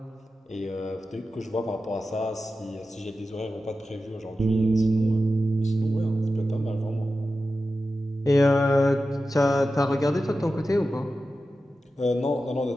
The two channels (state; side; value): normal; both; correlation 0.92